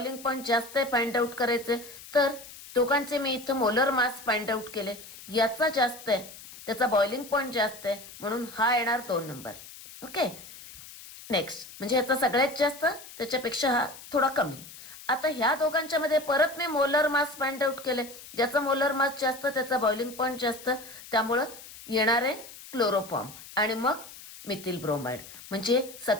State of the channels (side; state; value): left; noise; hiss, 16 dB below the sound